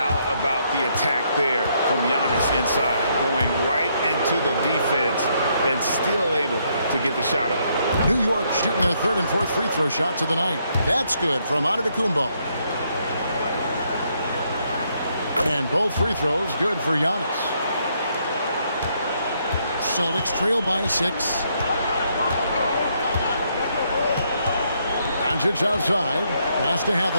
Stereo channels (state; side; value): inverted; both; correlation -0.73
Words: about the attack there from Giannis inside, going right into the defense and still able to get the shot up. New York shooting their third and fourth free throw shots of the night. That's good from Antetokounmpo. And both free throws good for Giannis. Celtics trail by 6. Doncic outside. Pass to